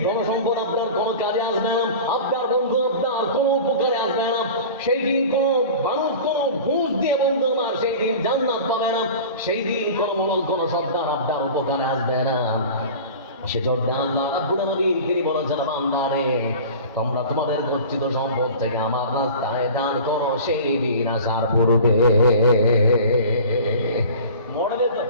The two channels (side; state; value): both; inverted; correlation -0.38